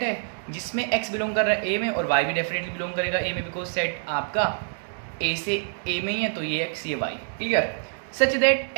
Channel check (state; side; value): silent; left; digital silence